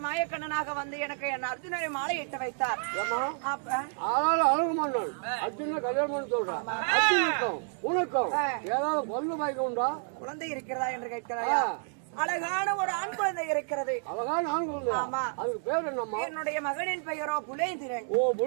வந்து எனக்கு என் அர்ஜுனரை மாலை இட்டு வைத்தார். அழகுமன்னன் அர்ஜுன கல்யாணம் சொல்றான். உனக்கும் ஏதாவது பொண்ணு பாய்க்க உண்டா? குழந்தை இருக்கிறதா என்று கேட்கிறாயா? அழகான ஒரு ஆண் குழந்தை இருக்கிறது. அழகான ஆண் குழந்தை? ஆமா. அதுக்கு பேர் என்னம்மா? என்னுடைய மகனின் பெயரோ புலேந்திரன். ஓ,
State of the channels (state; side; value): silent; left; 56 dB below the other